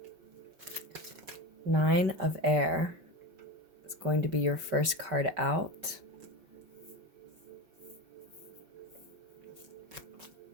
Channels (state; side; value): late; left; 5.2 ms